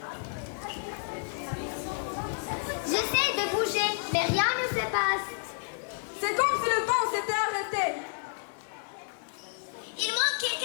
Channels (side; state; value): right; silent; 58 dB below the other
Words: J'essaie de bouger, mais rien ne se passe. C'est comme si le temps s'était arrêté. Il manque